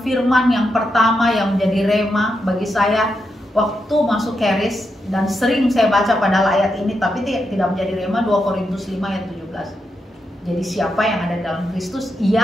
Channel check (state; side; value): normal; both; correlation 0.84